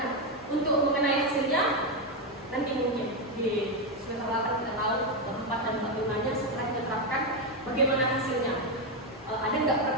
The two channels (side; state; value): both; normal; correlation 0.06